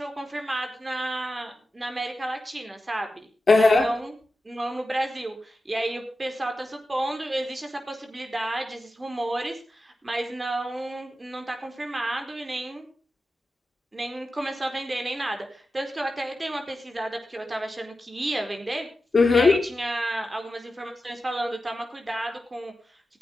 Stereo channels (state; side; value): normal; both; correlation 0.92